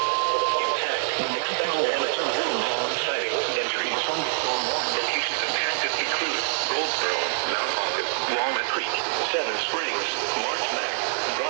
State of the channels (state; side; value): silent; left; digital silence